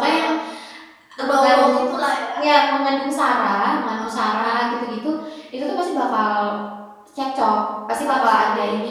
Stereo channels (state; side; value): identical; both; correlation 1.00